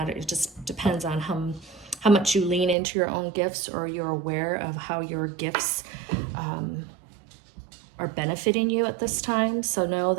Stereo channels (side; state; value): left; drops out; at 2.8 s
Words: It just depends on how much you lean into your own gifts, or you're aware of how your gifts are benefiting you at this time. So know